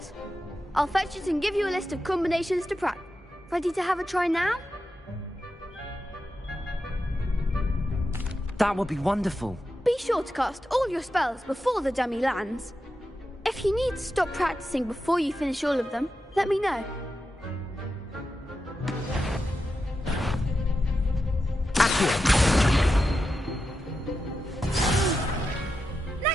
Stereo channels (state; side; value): normal; both; correlation 0.89